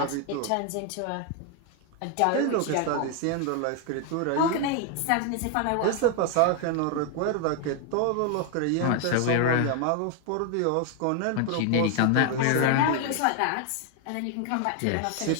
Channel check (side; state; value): both; different; correlation 0.01